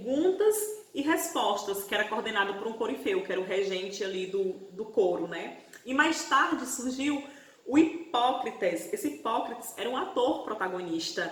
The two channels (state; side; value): identical; both; correlation 1.00